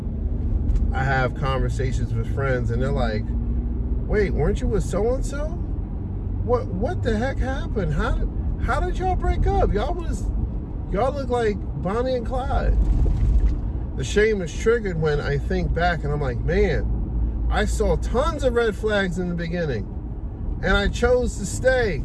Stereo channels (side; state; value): both; identical; correlation 1.00